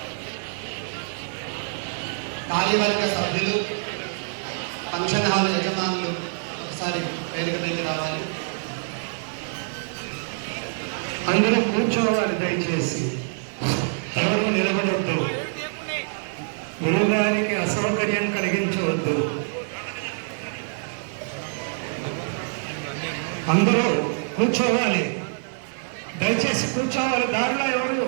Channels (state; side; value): silent; left; 61 dB below the other